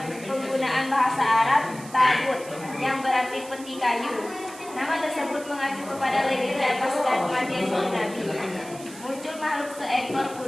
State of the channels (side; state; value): right; noise; hiss, 17 dB below the sound